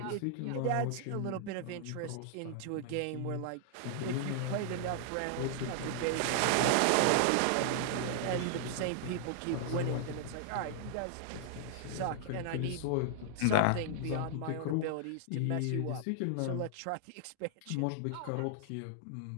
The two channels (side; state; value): both; different; correlation 0.00